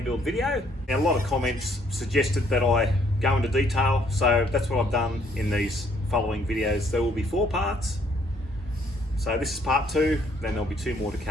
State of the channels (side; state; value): both; normal; correlation 0.66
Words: build video. Now, a lot of comments suggested that I go into detail, so that's what I've done in these following videos. There will be 4 parts. So this is part 2, then there'll be 2 more to